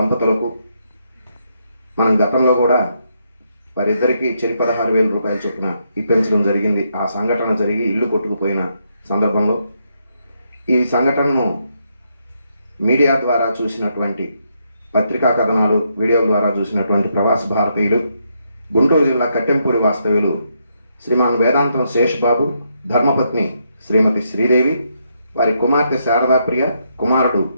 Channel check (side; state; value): both; inverted; correlation -0.78